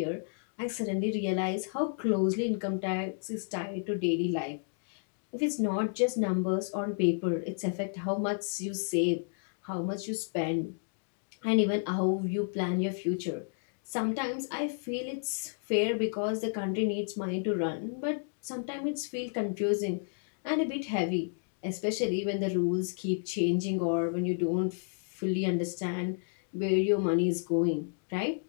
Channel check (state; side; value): silent; right; digital silence